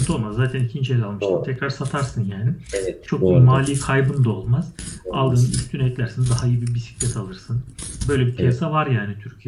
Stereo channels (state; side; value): identical; both; correlation 1.00